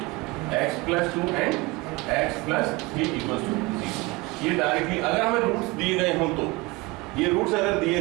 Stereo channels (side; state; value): left; quieter; 23.6 dB